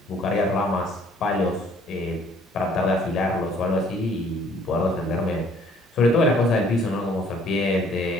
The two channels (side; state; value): both; normal; correlation 0.59